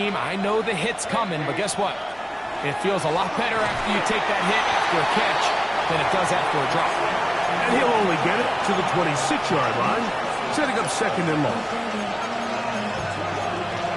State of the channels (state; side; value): identical; both; correlation 1.00